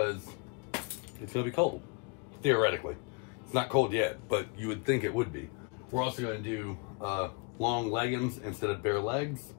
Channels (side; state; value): right; quieter; 32.8 dB